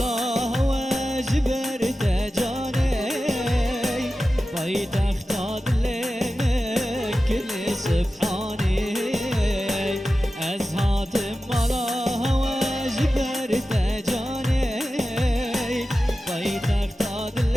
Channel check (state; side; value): normal; both; correlation 0.93